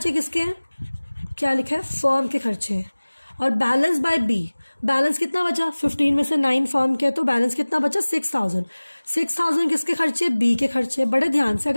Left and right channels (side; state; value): both; inverted; correlation -1.00